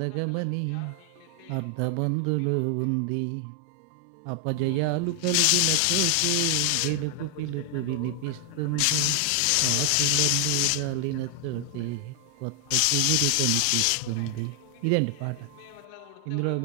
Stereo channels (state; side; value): different; both; correlation 0.00